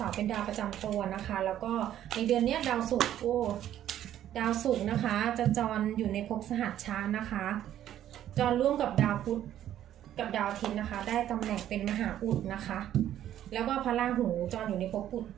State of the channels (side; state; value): left; quieter; 11.6 dB